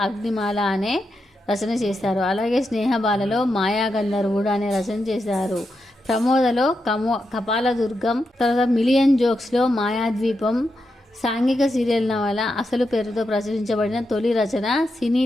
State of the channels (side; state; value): both; normal; correlation 0.86